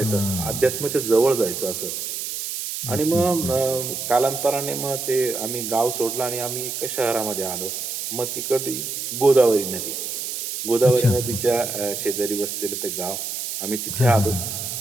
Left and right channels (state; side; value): noise; right; hiss, 5 dB below the sound